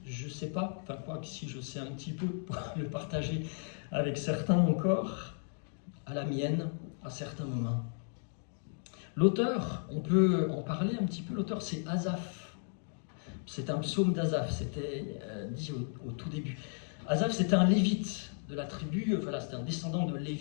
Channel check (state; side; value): silent; right; 55 dB below the other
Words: Je ne sais pas, enfin quoi que si je sais un petit peu pour le partager avec certains encore, à la mienne, à certains moments. L'auteur, on peut en parler un petit peu, l'auteur c'est Asaph. C'est un psaume d'Asaph, c'était dit au tout début. Asaph c'était un lévite de la tribu, voilà, c'était un descendant de